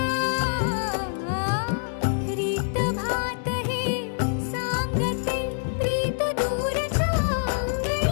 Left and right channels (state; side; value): silent; right; digital silence